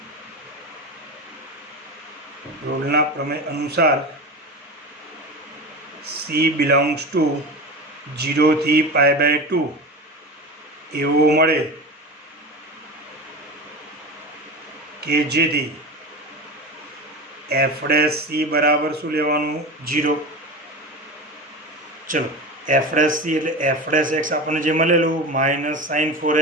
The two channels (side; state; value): both; normal; correlation 0.26